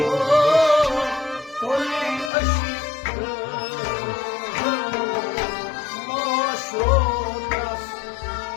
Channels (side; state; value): right; drops out; at 2.3 s